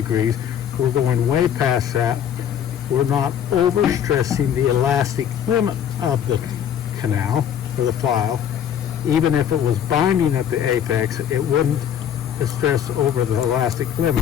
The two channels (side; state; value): right; quieter; 9.2 dB